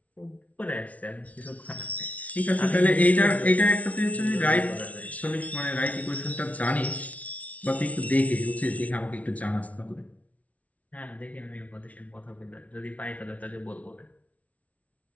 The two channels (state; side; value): late; right; 0.067 ms